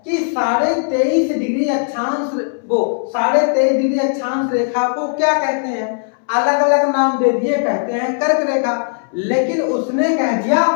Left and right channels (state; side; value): silent; right; 66 dB below the other